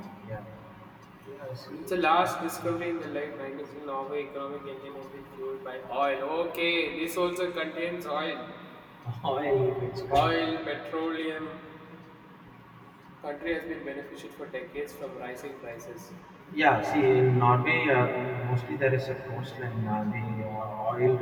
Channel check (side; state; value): both; identical; correlation 1.00